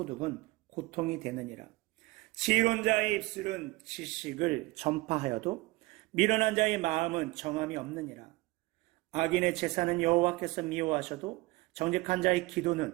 고통이 되느니라. 지혜로운 자의 입술은 지식을 전파하여도 미련한 자의 마음은 정함이 없느니라. 악인의 제사는 여호와께서 미워하셔도 정직한 자의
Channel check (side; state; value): left; quieter; 21.6 dB